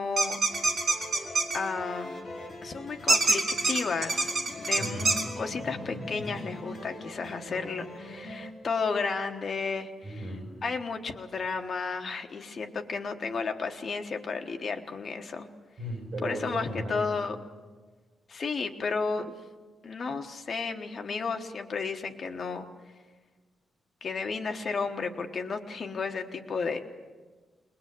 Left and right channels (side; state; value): both; normal; correlation 0.82